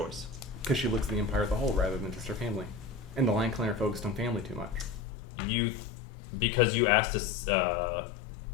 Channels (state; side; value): drops out; right; at 5.0 s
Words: because she looks at the Empire as a whole rather than just her family. And the Lion Clan are focused on family too much. Because you asked us,